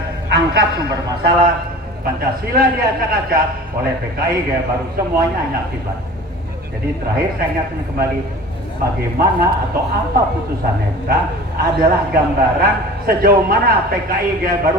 angkat sumber masalah. Pancasila diacak-acak oleh PKI Gaya Baru, semuanya hanya akibat. Jadi terakhir saya ingatkan kembali, bagaimana atau apa putusan MK adalah gambaran sejauh mana PKI Gaya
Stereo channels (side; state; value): both; normal; correlation 0.40